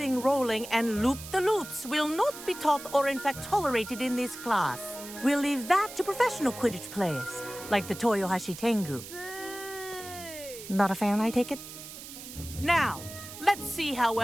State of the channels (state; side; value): noise; right; hiss, 13 dB below the sound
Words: rolling, and loop-the-loops will not be taught or in fact tolerated in this class. We'll leave that to professional Quidditch players, like the Toyohashi Tengu. Not a fan, I take it? Now, let's see how